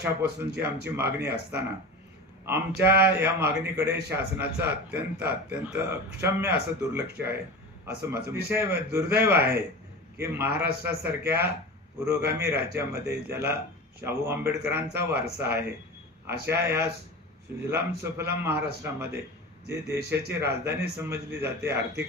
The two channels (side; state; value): both; normal; correlation 0.30